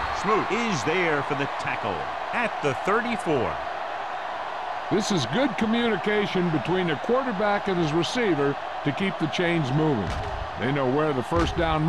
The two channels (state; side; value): identical; both; correlation 1.00